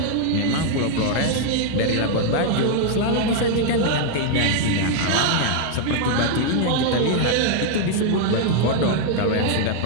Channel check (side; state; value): both; different; correlation -0.01